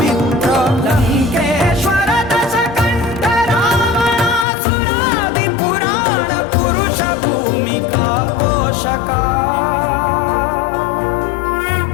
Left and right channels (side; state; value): right; drops out; at 4.5 s